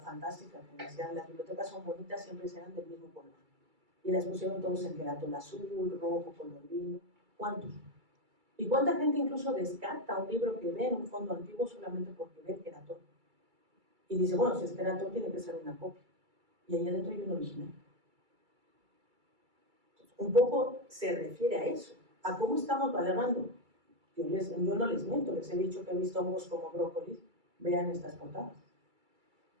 que decían las bibliotecas son bonitas, siempre serán del mismo color. Y las pusieron todos en queratul azul, rojo, color vino. ¿Cuántos? ¿Y cuánta gente incluso descarta un libro que ve en un fondo antiguo solamente porque ve el queratul? Y dice, bueno, si es queratul tiene que ser una copia. Y ahí adentro hay un original. Entonces, un poco se refiere a eso, a cómo estamos valorando. Yo no les miento, les he dicho que he visto hongos como brócolis, vean estas portadas.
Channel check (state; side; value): late; left; 2.3 ms